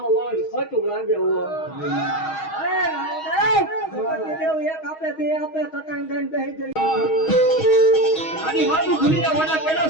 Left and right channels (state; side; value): late; right; 6.3 ms